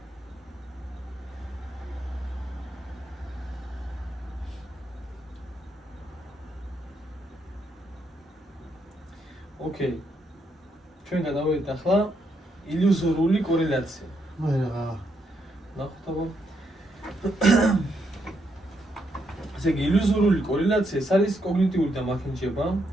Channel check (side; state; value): both; normal; correlation 0.78